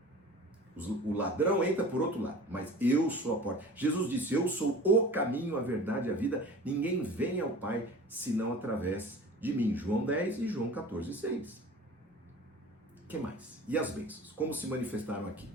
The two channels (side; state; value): both; normal; correlation 0.40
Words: O ladrão entra por outro lado, mas eu sou a porta. Jesus disse, eu sou o caminho, a verdade e a vida. Ninguém vem ao Pai senão através de mim. João 10 e João 14, 6. O que mais? E as bênçãos? Como se manifestaram aqui?